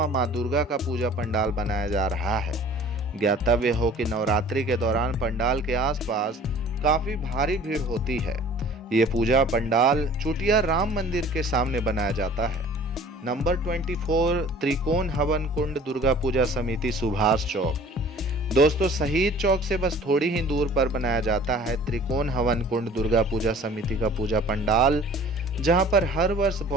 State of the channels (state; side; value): normal; both; correlation 0.48